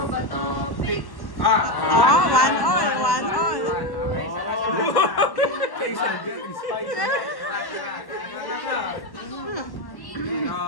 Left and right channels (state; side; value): late; right; 1.1 ms